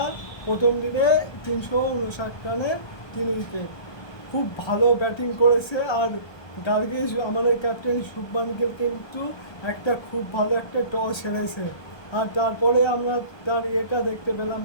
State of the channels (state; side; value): late; right; 1.2 ms